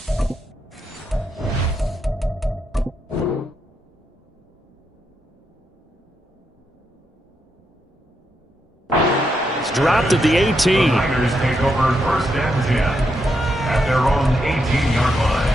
It's dropped at the 18. The Niners take over first and 10 at their own 18-yard line.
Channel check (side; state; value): both; normal; correlation 0.81